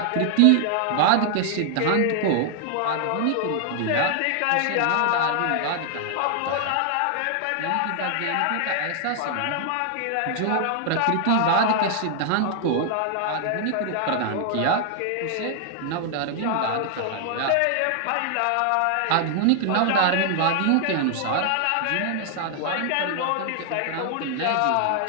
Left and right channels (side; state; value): both; different; correlation 0.00